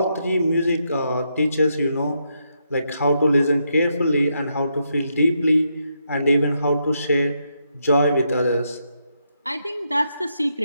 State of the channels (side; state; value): both; inverted; correlation -0.80